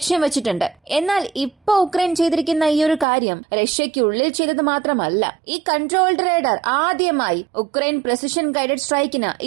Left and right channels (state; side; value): drops out; left; at 3.1 s